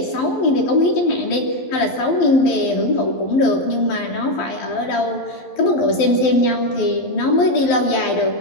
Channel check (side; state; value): right; late; 12 ms